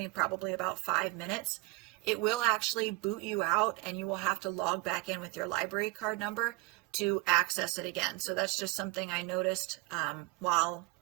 probably about 5 minutes. It will actually boot you out and you will have to log back in with your library card number to access it again. So that's just something I noticed while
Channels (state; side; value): quieter; left; 22.5 dB